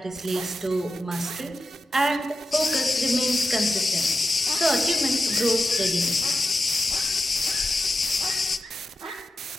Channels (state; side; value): normal; both; correlation 0.91